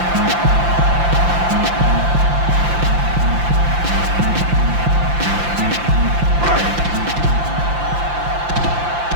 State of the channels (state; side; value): late; left; 5.8 ms